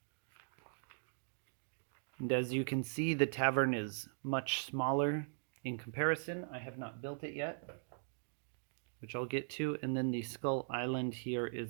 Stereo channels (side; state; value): left; silent; digital silence